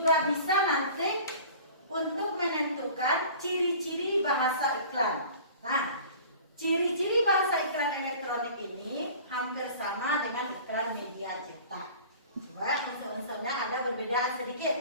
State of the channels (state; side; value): inverted; both; correlation -0.44